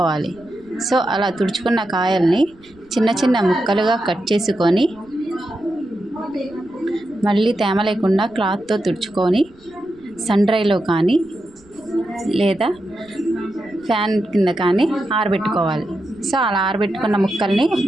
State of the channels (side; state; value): right; noise; rumble, 29 dB below the sound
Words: సో అలా తుడుచుకున్న కాయల్ని చిన్న చిన్న ముక్కలుగా కట్ చేసుకొని మళ్ళీ తేమ లేకుండా క్లాత్తో తుడుచుకొని సన్ డ్రైలో కానీ లేదా ఫ్యాన్ కింద కానీ ఆరబెట్టుకోవాలి. సో అలా ఆరబెట్టుకున్న ముక్కల్ని